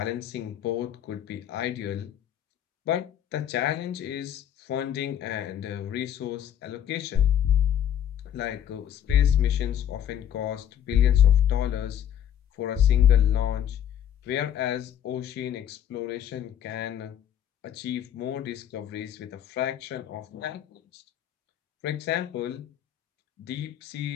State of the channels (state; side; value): quieter; right; 10.2 dB